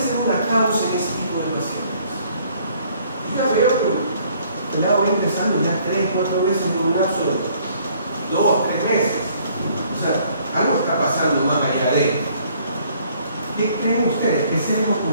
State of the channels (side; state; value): both; inverted; correlation -0.61